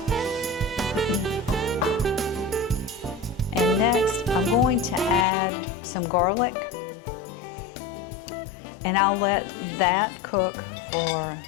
And next, I'm going to add some garlic. And I'll let that cook for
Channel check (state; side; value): drops out; right; at 5.2 s